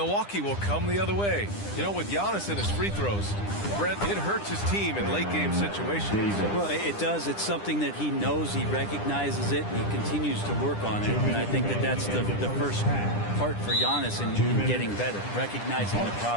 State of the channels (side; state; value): right; late; 9.9 ms